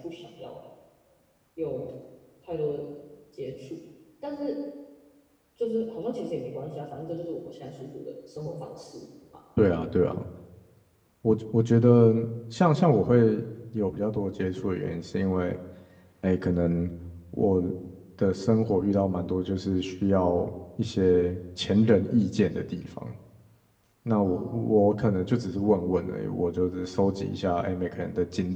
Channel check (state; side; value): identical; both; correlation 1.00